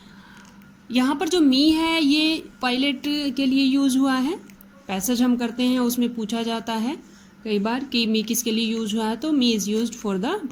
यहाँ पर जो मी है ये पायलट के लिए यूज हुआ है। पैसेज हम करते हैं उसमें पूछा जाता है कई बार कि मी किसके लिए यूज हुआ है, तो me is used for the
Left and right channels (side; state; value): both; identical; correlation 1.00